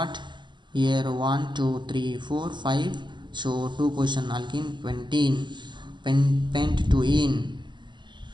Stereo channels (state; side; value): late; left; 0.22 ms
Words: here 1 2 3 4 5, so 2 position alkene, pentene, pent 2 ene